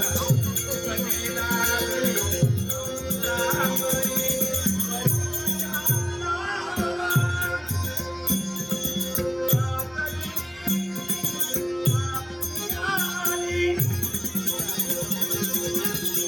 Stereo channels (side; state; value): both; identical; correlation 1.00